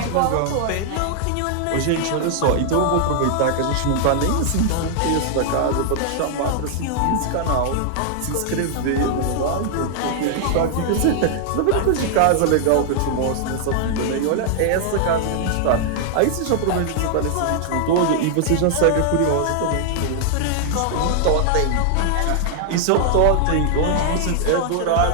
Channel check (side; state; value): both; different; correlation -0.01